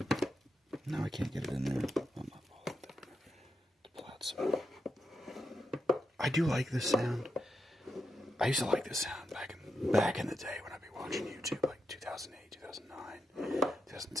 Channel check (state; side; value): normal; both; correlation 0.85